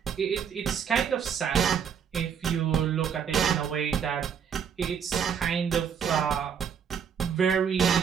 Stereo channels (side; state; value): left; quieter; 7.6 dB